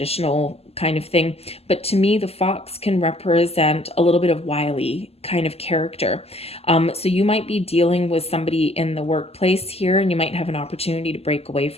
kind of thing. But to me, the fox can represent a little bit of wily kind of character. So you might be dealing with somebody in the workplace here, and you might have an opportunity to break away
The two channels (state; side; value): late; right; 0.29 ms